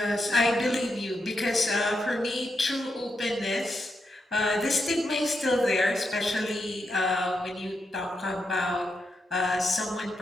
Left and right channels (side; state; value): both; normal; correlation 0.84